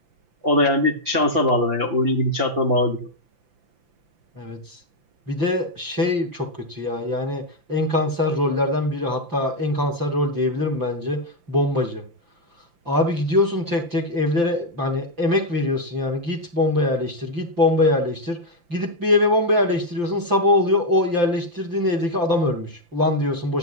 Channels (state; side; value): late; left; 5.9 ms